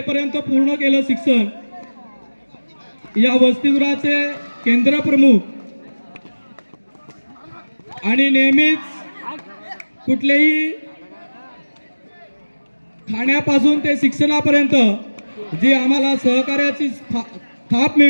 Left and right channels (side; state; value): both; inverted; correlation -1.00